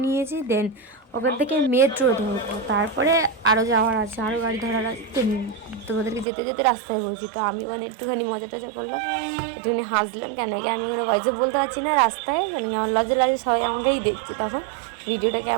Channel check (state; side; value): drops out; left; at 6.2 s